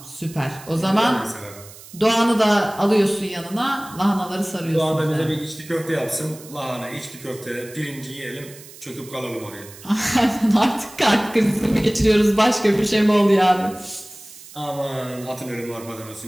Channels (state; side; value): noise; right; hiss, 18 dB below the sound